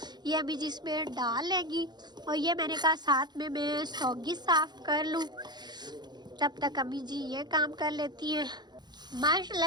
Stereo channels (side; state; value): left; late; 0.21 ms